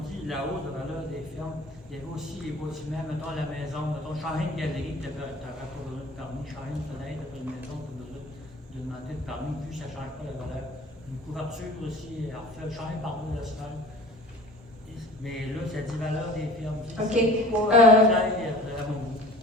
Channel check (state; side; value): normal; both; correlation 0.44